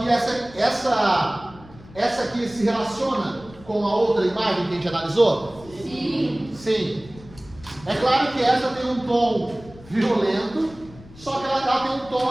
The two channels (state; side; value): noise; left; rumble, 21 dB below the sound